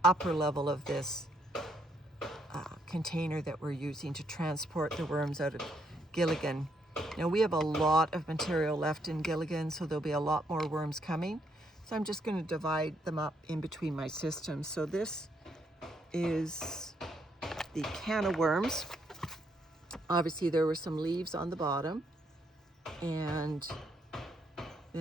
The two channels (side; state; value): both; normal; correlation 0.74